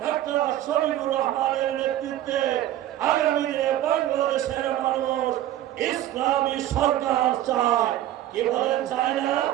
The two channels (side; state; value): left; quieter; 13.2 dB